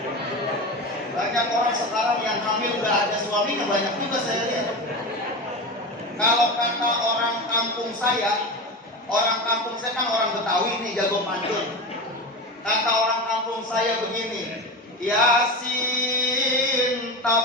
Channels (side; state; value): both; normal; correlation 0.24